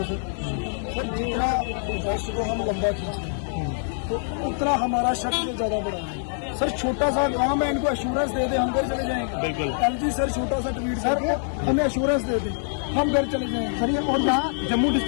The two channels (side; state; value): right; silent; digital silence